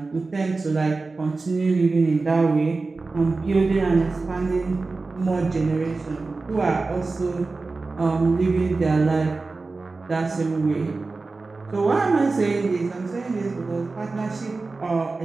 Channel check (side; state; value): left; quieter; 3.7 dB